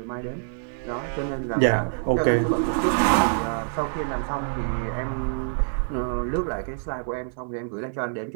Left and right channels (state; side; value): silent; left; 61 dB below the other